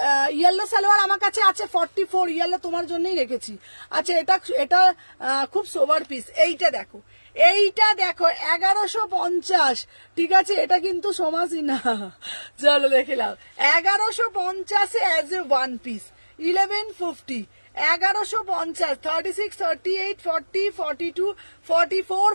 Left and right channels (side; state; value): both; inverted; correlation -1.00